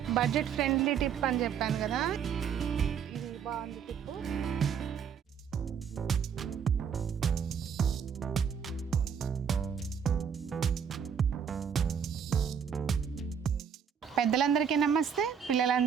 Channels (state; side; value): quieter; left; 7.4 dB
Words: బడ్జెట్ ఫ్రెండ్లీ టిప్ అని చెప్పాను కదా, ఇది బాగుంది టిప్. పెద్దలందరికీ నమస్తే,